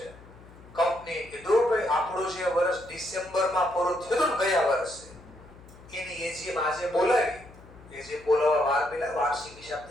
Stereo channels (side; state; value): left; noise; hum, 21 dB below the sound